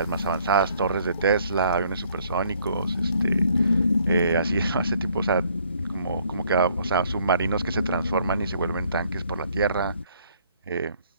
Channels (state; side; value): inverted; both; correlation -0.64